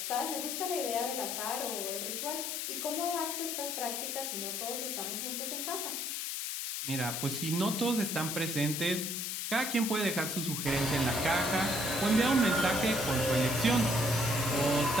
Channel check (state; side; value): noise; left; hiss, 3 dB below the sound